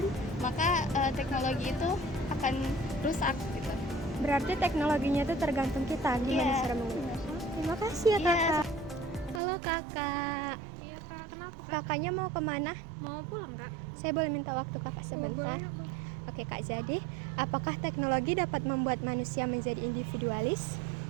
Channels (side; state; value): left; drops out; at 9.4 s